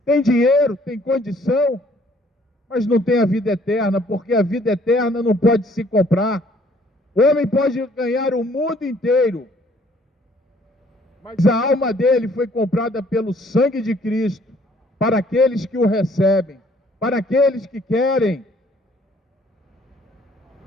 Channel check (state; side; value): normal; both; correlation 0.61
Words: têm dinheiro, têm condição, mas não tem a vida eterna, porque a vida eterna não pode se comprar. O homem pode ganhar o mundo inteiro, mas a alma dele foi comprada pelo sangue de Cristo, para aqueles que o recebem, para aqueles que querem.